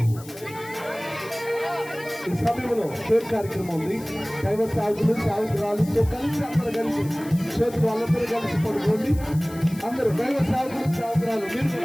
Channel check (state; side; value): noise; left; hiss, 19 dB below the sound